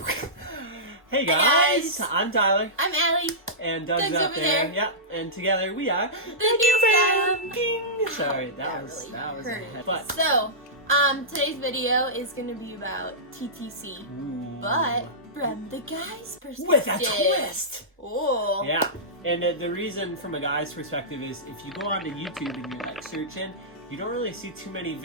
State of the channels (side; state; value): both; normal; correlation -0.16